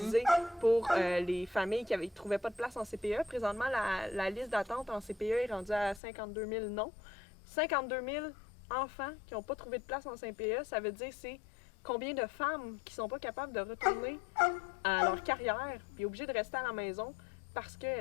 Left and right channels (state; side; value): drops out; right; at 6.0 s